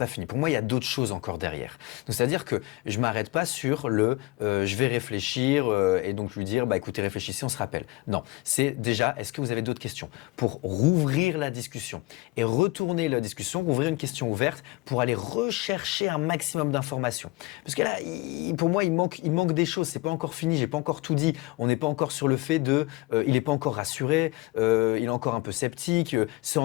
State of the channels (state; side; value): quieter; right; 22.0 dB